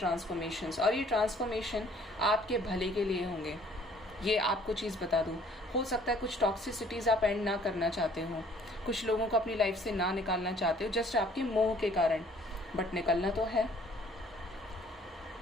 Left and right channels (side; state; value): both; normal; correlation 0.58